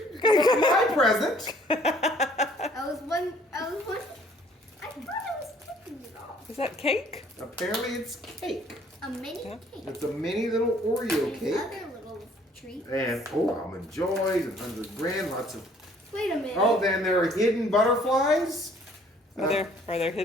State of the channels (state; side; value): normal; both; correlation 0.59